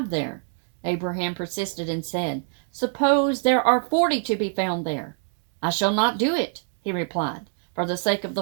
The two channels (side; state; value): left; silent; 56 dB below the other